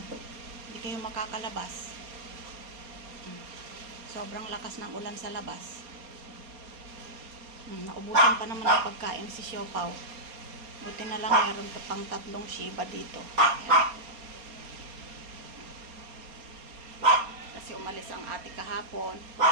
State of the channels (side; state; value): left; late; 4.3 ms